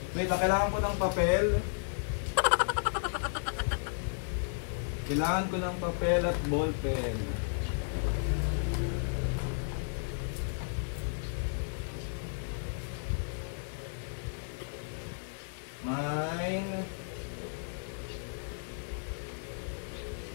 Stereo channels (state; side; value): silent; right; 55 dB below the other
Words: Wait, kailangan ko ng papel. Kailangan ko ng papel at ballpen. Mine.